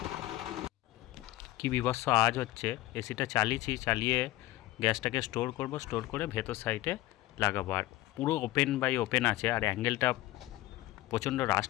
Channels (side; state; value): right; quieter; 16.8 dB